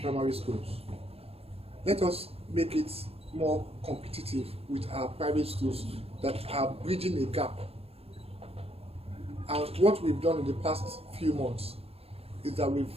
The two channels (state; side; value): late; left; 0.29 ms